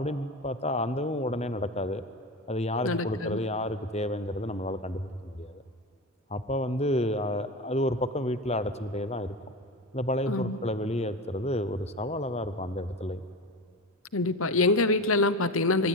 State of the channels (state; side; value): normal; both; correlation 0.25